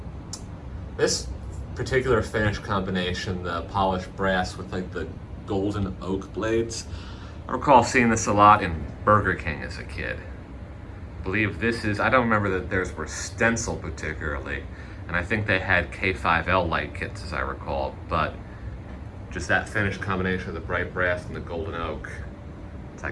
This particular finish combination, the polished brass with like the golden oak blades. I recall seeing this a lot in Burger King as a kid. I believe this is, I don't remember that theirs were Stencil particularly, and I think they had K5L light kits as I recall, but just that finish combination of the bright brass and the golden oak, it's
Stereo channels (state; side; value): identical; both; correlation 1.00